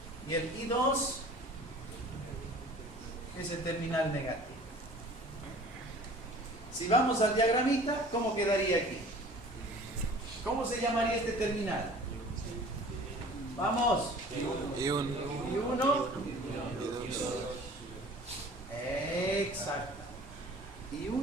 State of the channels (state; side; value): normal; both; correlation 0.46